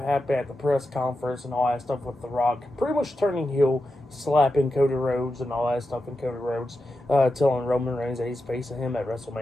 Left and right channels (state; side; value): normal; both; correlation 0.90